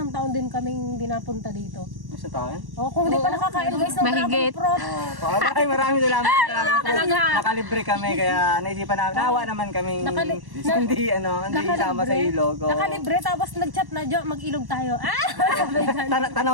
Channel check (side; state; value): left; late; 1.1 ms